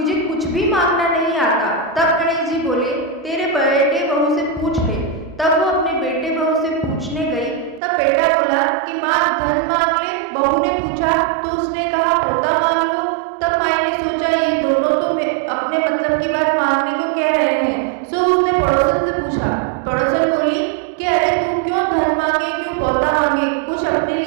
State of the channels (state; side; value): drops out; left; at 7.8 s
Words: कुछ भी मांगना नहीं आता। तब गणेश जी बोले, तेरे बेटे बहू से पूछ ले। तब वो अपने बेटे बहू से पूछने गई। तब बेटा बोला कि माँ धन मांग ले। बहू ने पूछा तो उसने कहा पोता मांग लो। तब माई ने सोचा ये दोनों तो अपने मतलब की बात मांगने को कह रहे हैं, सो उसने पड़ोसन से पूछा। पड़ोसन बोली कि अरे तू क्यों धन मांगे, क्यों पोता मांगे, कुछ अपने